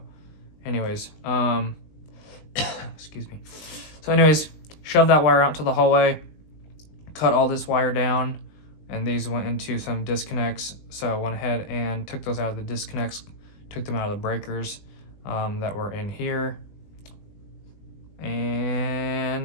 anyways, excuse me. So anyways, shove that wire out to the hallway, cut all this wire down, and these went into some disconnects, so I went ahead and took those out of the disconnects, took them out of the breakers that were in here,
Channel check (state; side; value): late; right; 20 ms